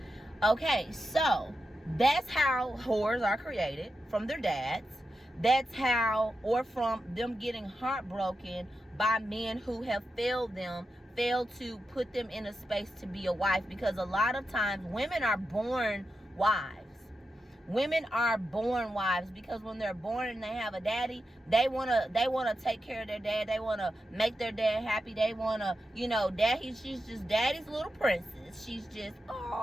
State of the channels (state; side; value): normal; both; correlation 0.89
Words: Okay, so that's how whores are created, from their dads. That's how, or from them getting heartbroken by men who have failed to put them in a space to be a wife. Because a lot of times women are born wives. Women are born wives because when they're born and they have a daddy, they wanna take care of their dad. They wanna make their dad happy. They wanna, you know, she's just daddy's little princess. She's just,